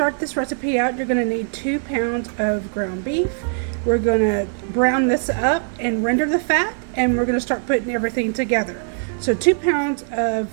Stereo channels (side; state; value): left; silent; 65 dB below the other